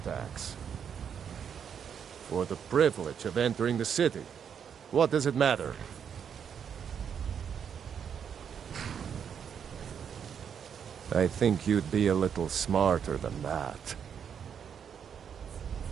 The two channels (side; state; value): left; quieter; 7.7 dB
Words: For the privilege of entering the city. What does it matter? I think you'd be a little smarter than that.